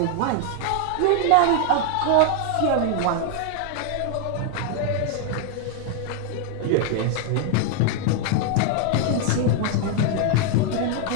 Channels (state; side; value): different; both; correlation 0.00